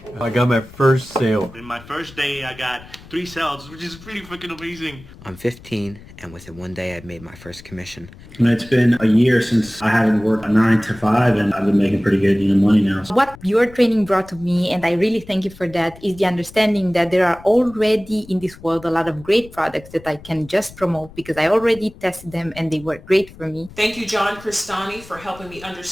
I got my first sale. In my first day, I got 3 sales, which is pretty freaking amazing. I'm 15, and within one day, I'd made my first commission. And it's been a year since I haven't worked a 9 to 5, and I've been making pretty good money now. What your training brought to me, and I really thank you for that, is the understanding that there are already in this world a lot of great products that I can just promote because I already tested them and they work great for me. Thank you, John Cristani, for helping me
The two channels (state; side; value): noise; left; rumble, 20 dB below the sound